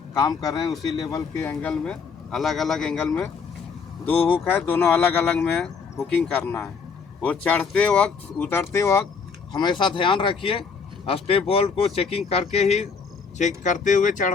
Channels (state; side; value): quieter; right; 5.5 dB